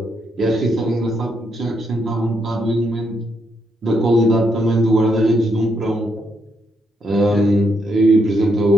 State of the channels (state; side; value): normal; both; correlation 0.77